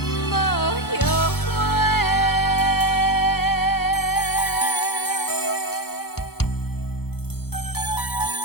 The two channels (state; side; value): late; right; 0.96 ms